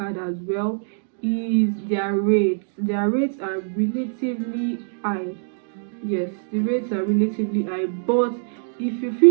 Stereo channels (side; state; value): left; silent; digital silence